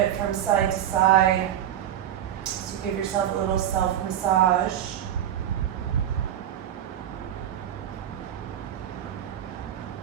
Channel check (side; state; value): left; quieter; 10.9 dB